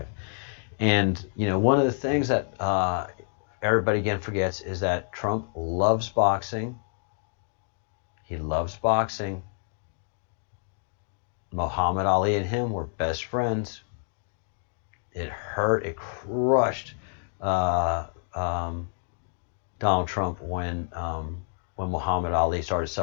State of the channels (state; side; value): silent; right; digital silence